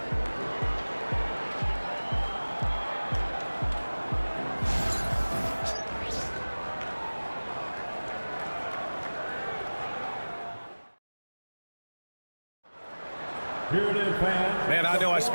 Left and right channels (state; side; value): inverted; both; correlation -1.00